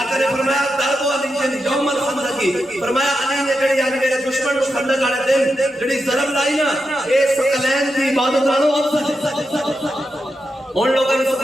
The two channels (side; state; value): both; normal; correlation 0.87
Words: نے فرمایا ضرب علی یوم الخندق. فرمایا علی نے جڑی یعنی میرے دشمن کو خندق والے دن جڑی ضرب لائی نا اے ثقلین دی عبادت نالوں افضل ہے. ان لوگوں نے